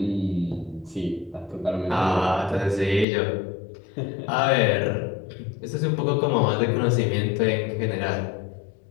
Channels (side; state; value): right; drops out; at 3.1 s